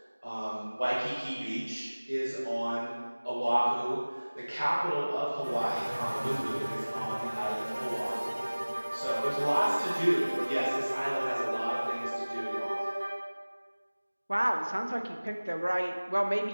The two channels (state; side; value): inverted; both; correlation -1.00